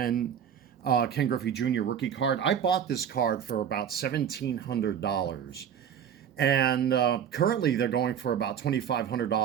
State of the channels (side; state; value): left; quieter; 8.5 dB